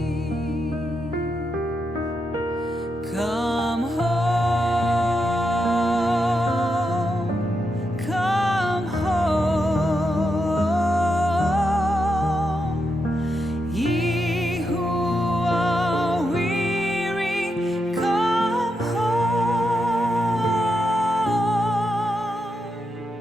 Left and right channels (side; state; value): both; normal; correlation 0.84